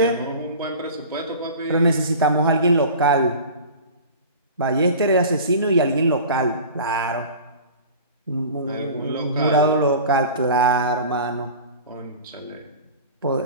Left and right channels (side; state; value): both; inverted; correlation -0.38